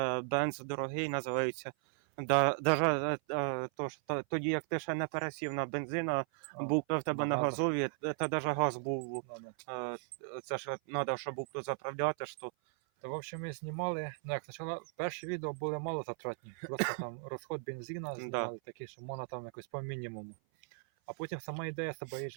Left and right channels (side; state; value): left; silent; 53 dB below the other